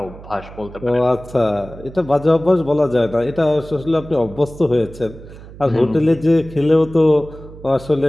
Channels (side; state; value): right; noise; hum, 17 dB below the sound